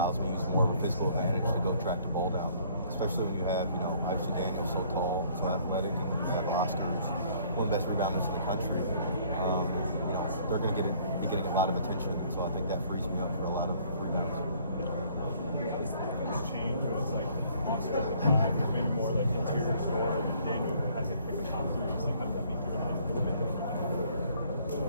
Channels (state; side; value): inverted; both; correlation -0.60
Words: me to use more of a physical advantage to go track the ball down. Especially when you have, obviously Daniel's so tall, so athletic, and you have Oscar, who's one of the best rebounders in the country. They're going to be getting a lot of attention, and so I think that frees me up for a lot of rebounds. Change, but it's like Oscar, maybe more like interior score, and Daniel has to pick the top 3s. Like, how does that make your life a little bit different?